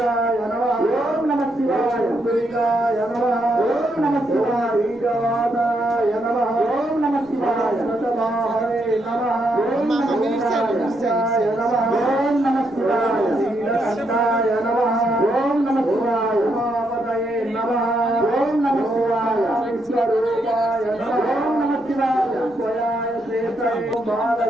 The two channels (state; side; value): noise; left; rumble, 30 dB below the sound